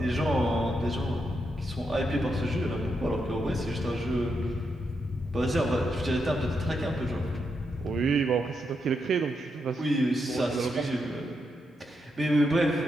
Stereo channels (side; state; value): both; normal; correlation 0.83